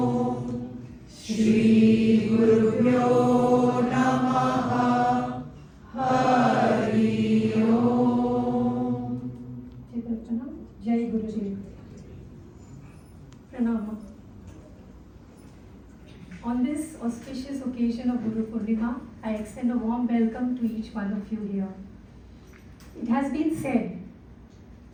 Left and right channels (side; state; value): both; identical; correlation 1.00